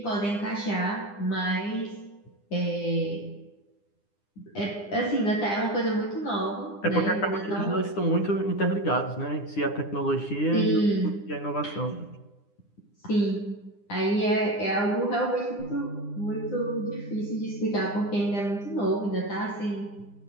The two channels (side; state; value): right; late; 9.8 ms